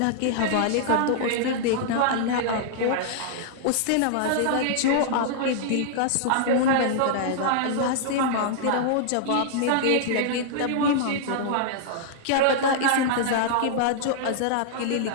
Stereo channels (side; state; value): both; different; correlation -0.01